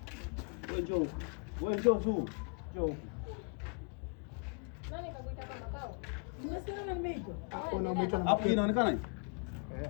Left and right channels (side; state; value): right; quieter; 38.6 dB